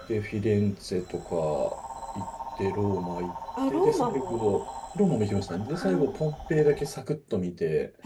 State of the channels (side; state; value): both; identical; correlation 1.00